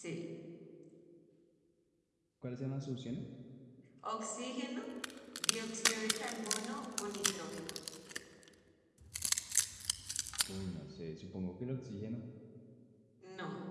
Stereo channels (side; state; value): both; identical; correlation 1.00